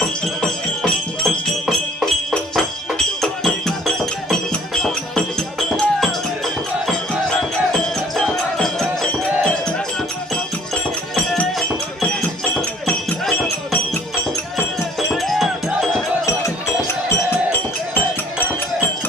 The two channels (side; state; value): both; normal; correlation 0.55